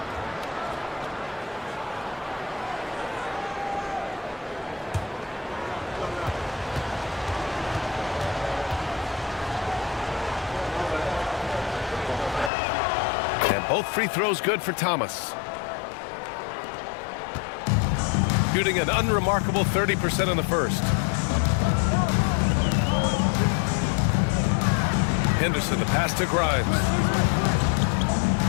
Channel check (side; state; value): right; drops out; at 12.5 s